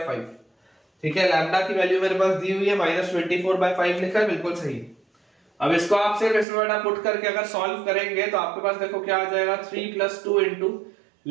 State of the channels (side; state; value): left; drops out; at 6.5 s